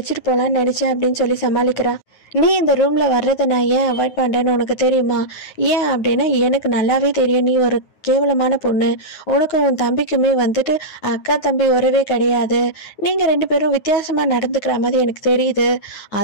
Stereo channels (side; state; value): right; late; 9.4 ms